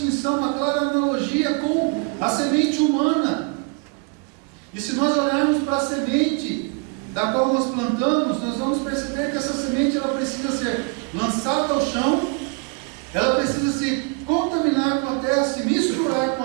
uma clara analogia com a semente humana. E se nós olharmos para a semente da qual nós plantamos, nós vamos perceber que essa semente ela precisa ser lançada ao chão, ela precisa se contaminar com a terra, se misturar com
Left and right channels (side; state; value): left; quieter; 33.6 dB